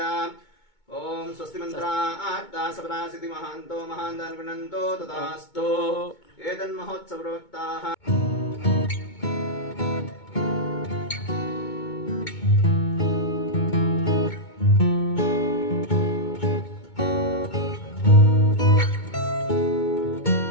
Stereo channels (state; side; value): late; right; 2.2 ms